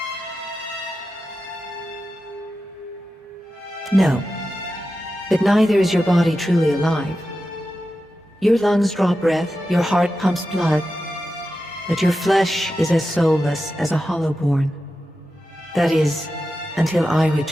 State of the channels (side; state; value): both; normal; correlation 0.91